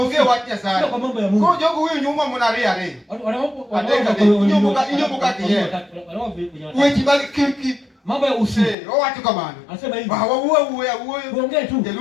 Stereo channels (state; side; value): drops out; right; at 8.8 s